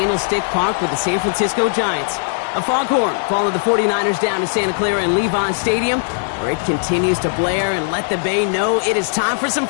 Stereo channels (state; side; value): silent; right; digital silence